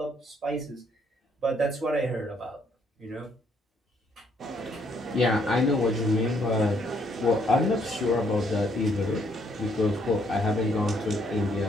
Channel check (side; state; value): both; normal; correlation 0.70